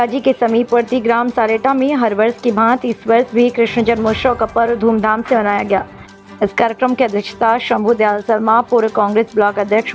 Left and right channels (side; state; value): both; identical; correlation 1.00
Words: के समीपवर्ती ग्राम सारेटा में हर वर्ष की भांति इस वर्ष भी कृष्ण जन्मोत्सव का पर्व धूमधाम से मनाया गया। इस कार्यक्रम की अध्यक्षता शंभू दयाल शर्मा, पूर्व कांग्रेस ब्लॉक अध्यक्ष,